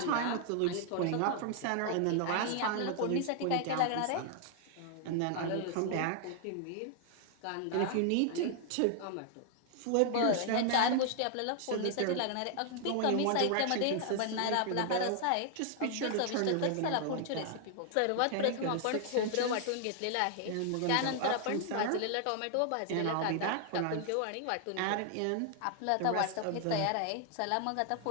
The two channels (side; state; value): both; different; correlation 0.00